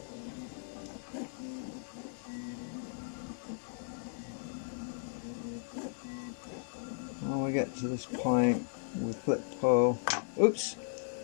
When we get to this point, we flip the pole. Oops!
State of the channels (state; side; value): silent; right; 54 dB below the other